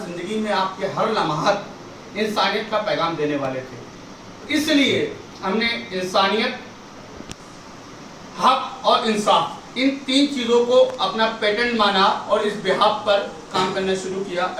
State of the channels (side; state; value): both; identical; correlation 1.00